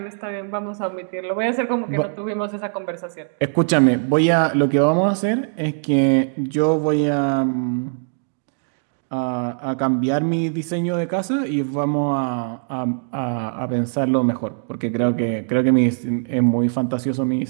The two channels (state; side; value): silent; left; digital silence